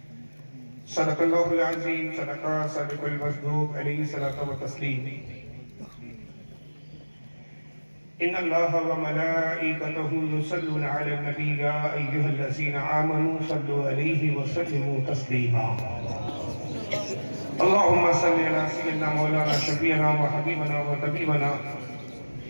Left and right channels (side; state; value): both; inverted; correlation -1.00